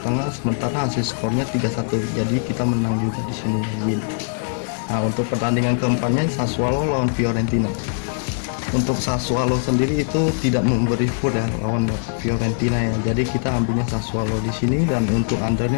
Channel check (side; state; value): right; silent; digital silence